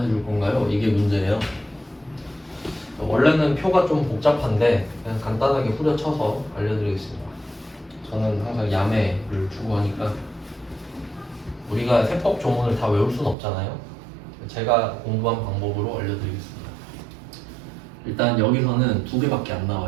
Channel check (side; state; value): left; drops out; at 13.4 s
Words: 해줄 건가요? 이게 문제예요. 원래는 표가 좀 복잡한데 그냥 간단하게 후려쳐서 알려드리겠습니다. 저는 항상 야매를 추구하니까 우리가 세법 조문을 다 외울 수는 없잖아요. 제가 공부한 방법으로 알려드리겠습니다. 일단 여기서는 두 개밖에 안